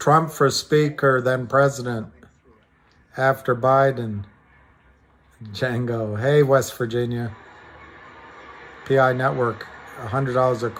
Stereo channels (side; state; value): both; identical; correlation 1.00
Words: for Speaker, then President, after Biden. Django. Hey, West Virginia. PI Network, $100 a